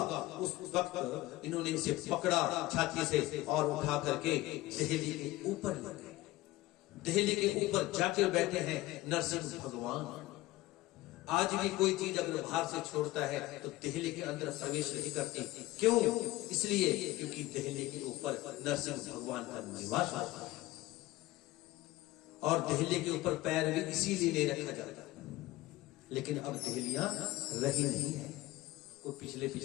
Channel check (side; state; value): right; quieter; 18.2 dB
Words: उस वक्त इन्होंने इसे पकड़ा छाती से और उठा करके दहली के ऊपर ले गए। दहली के ऊपर जाके बैठे हैं नरसिंह भगवान। आज भी कोई चीज अगर बाहर से छोड़ता है तो दहली के अंदर प्रवेश नहीं करती। क्यों? इसलिए क्योंकि दहली के ऊपर नरसिंह भगवान का निवास होता है, और दहली के ऊपर पैर भी इसीलिए नहीं रखा जाता। लेकिन अब दहलियां रही नहीं है। वो पिछले